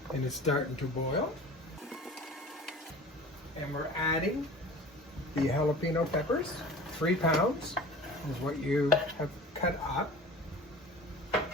and it's starting to boil. And we're adding the jalapeno peppers. 3 pounds is what you have cut up.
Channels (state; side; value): normal; both; correlation 0.40